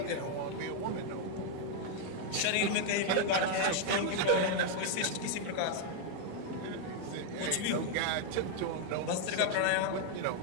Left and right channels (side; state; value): both; different; correlation 0.00